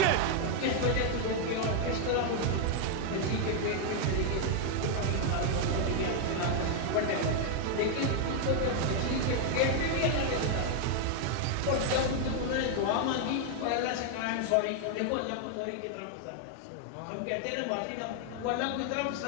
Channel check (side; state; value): both; different; correlation 0.00